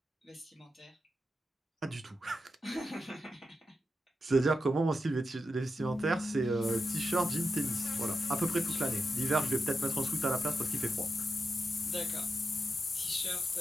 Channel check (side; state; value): both; normal; correlation 0.88